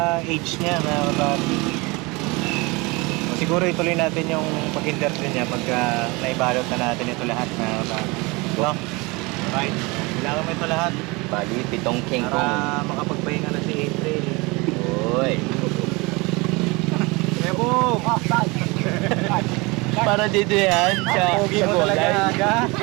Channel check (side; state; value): left; quieter; 25.6 dB